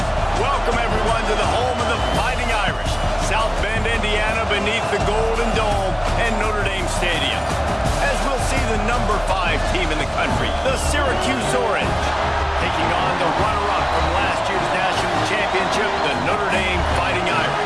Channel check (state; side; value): identical; both; correlation 1.00